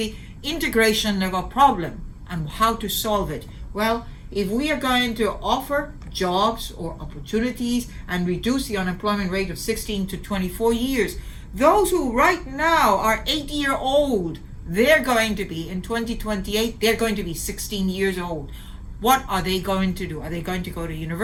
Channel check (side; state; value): both; identical; correlation 1.00